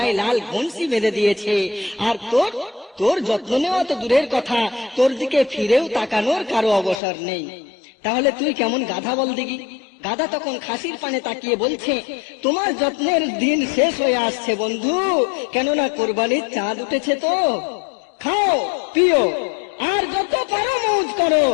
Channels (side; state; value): right; drops out; at 7.0 s